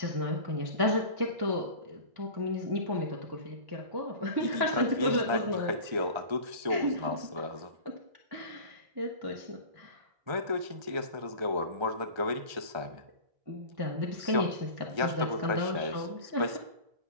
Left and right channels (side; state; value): left; late; 1.3 ms